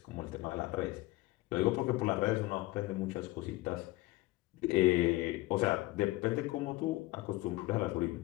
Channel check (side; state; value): right; quieter; 19.4 dB